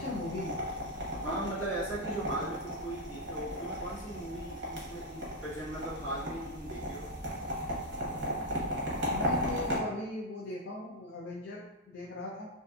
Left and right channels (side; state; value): both; normal; correlation 0.01